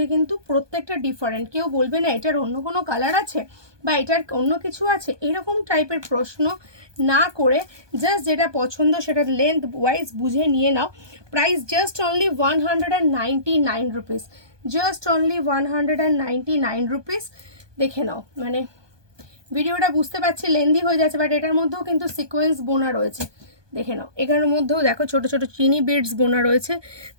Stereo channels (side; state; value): left; late; 1.2 ms